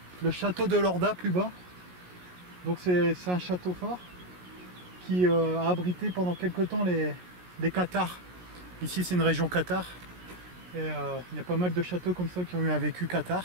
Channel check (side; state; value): left; late; 17 ms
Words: château de Lorda plus bas. Donc c'est un château fort qui a abrité pendant quelque temps les Cathares. Ici c'est une région cathare. Et il y a pas mal de châteaux comme ça qui ont eu un vécu cathare.